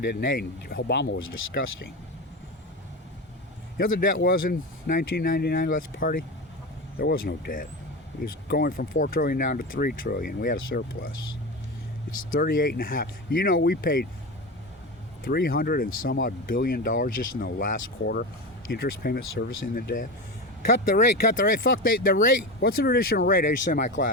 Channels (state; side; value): normal; both; correlation 0.22